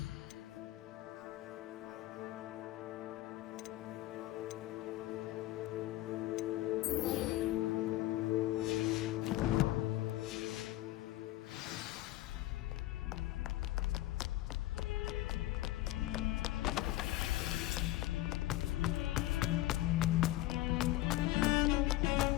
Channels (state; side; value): quieter; right; 16.0 dB